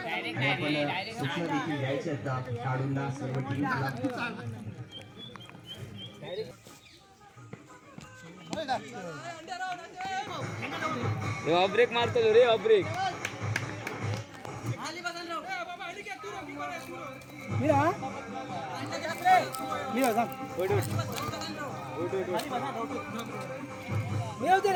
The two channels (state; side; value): identical; both; correlation 1.00